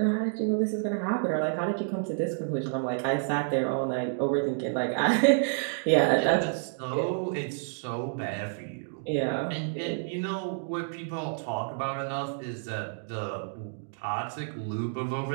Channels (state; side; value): silent; left; digital silence